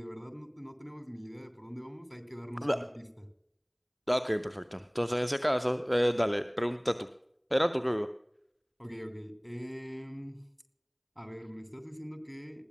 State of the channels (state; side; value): identical; both; correlation 1.00